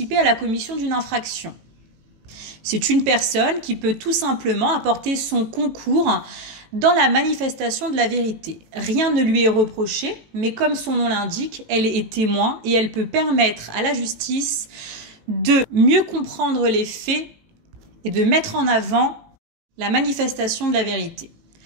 à la commission d'une infraction. C'est une personne qui peut tout simplement apporter son concours dans la manifestation de la vérité. Rien ne lui est reproché, mais comme son nom l'indique, elle est témoin et elle peut permettre à la justice de mieux comprendre les faits et de mettre en avant la manifestation de la vérité.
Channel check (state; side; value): late; left; 18 ms